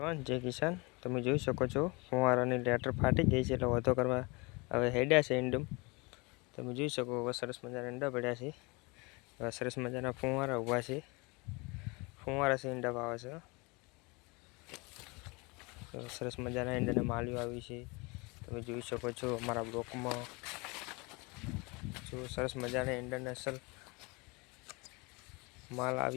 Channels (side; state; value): right; quieter; 27.3 dB